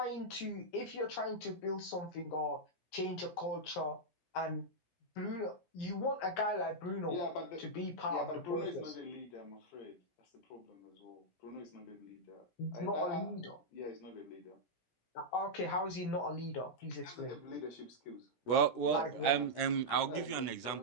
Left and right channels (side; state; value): right; late; 17 ms